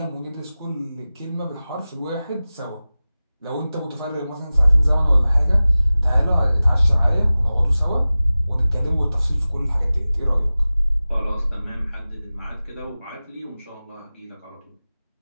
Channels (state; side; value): inverted; both; correlation -0.97